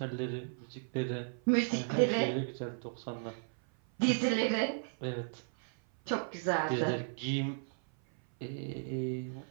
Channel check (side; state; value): left; silent; 55 dB below the other